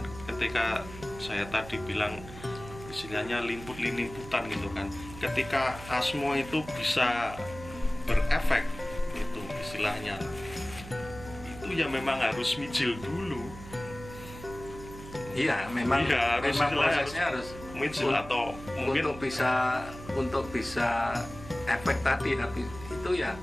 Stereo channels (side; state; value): right; noise; hum, 14 dB below the sound